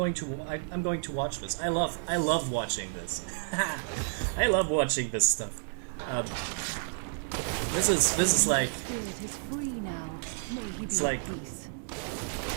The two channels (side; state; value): left; silent; digital silence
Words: to watch this. I love watching this. I love watching this stuff. This is like Spirit is free now. May he be it's at like peace. The